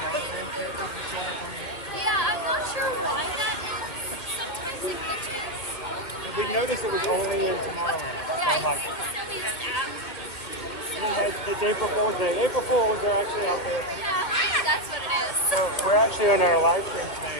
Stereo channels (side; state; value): right; late; 2.5 ms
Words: characters were showing up on the Yeah, I'm not sure why that is. Sometimes it glitches. We noticed it was only in Tomorrowland. Yeah, It's April Fool's Day. April Fools are actually out there. yeah, that's what it is. So we're actually on our live stream